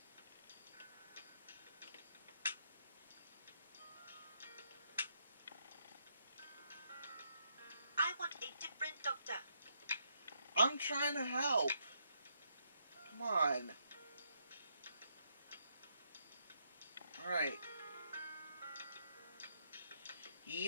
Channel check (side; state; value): both; inverted; correlation -0.77